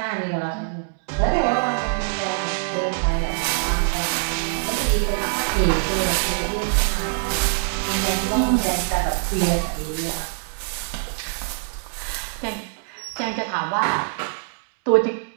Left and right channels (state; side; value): silent; left; digital silence